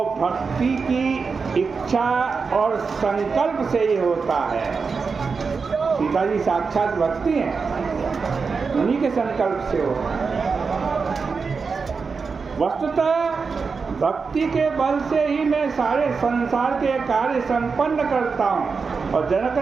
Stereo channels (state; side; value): quieter; left; 5.0 dB